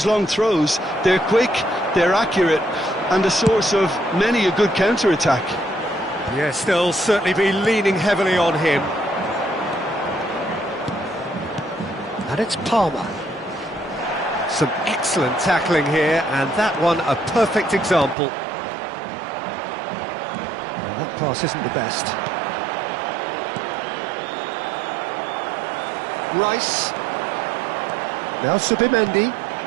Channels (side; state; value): left; drops out; at 18.2 s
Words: long throws. They're quick, they're accurate, and a source of many a good counter-attack. Yes, they'll certainly be leaning heavily on him. And it's Palmer. Some excellent tackling here, and that one a perfect example. Well, that pass isn't the best. Rice. Now Subimendi.